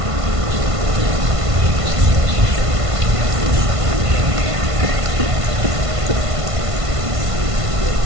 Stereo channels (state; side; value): late; left; 1.5 ms